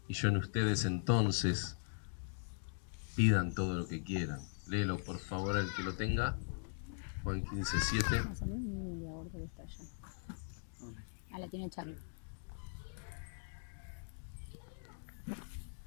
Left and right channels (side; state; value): right; silent; digital silence